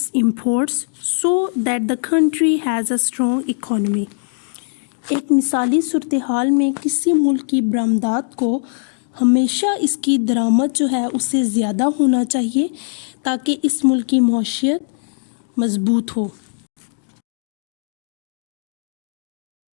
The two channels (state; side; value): silent; right; digital silence